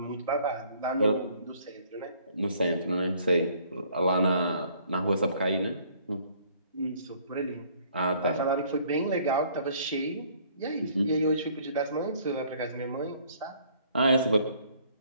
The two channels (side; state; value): both; inverted; correlation -0.60